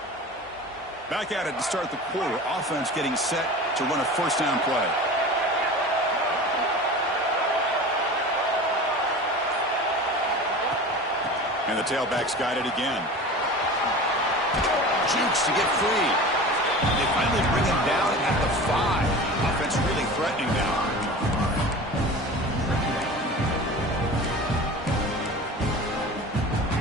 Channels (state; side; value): normal; both; correlation 0.35